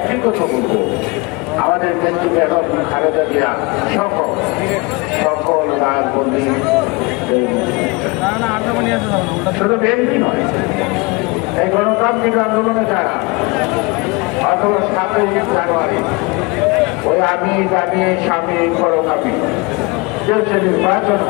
কথা বলবো, আমাদের দেশটি বেগম খালেদা জিয়া সকল রাজবন্দী শুধু বিএনপি নয়, এই গণতান্ত্রিক আন্দোলনে যারা অথবা 7ই জানুয়ারি ওই আমি স্বামী পরকামী যে নির্বাচন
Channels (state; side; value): quieter; right; 26.6 dB